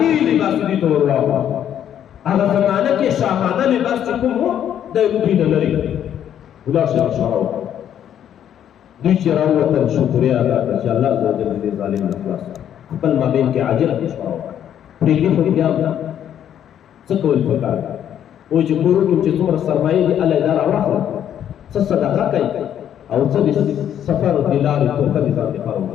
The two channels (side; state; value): right; quieter; 10.0 dB